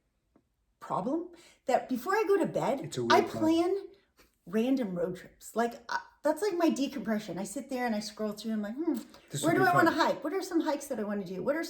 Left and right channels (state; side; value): identical; both; correlation 1.00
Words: problem that before I go to bed, I plan random road trips. Like that's like my decompression. I sit there and I scroll through. I'm like, This where would do be I want to fun. hike? What are some hikes that I want to do? What are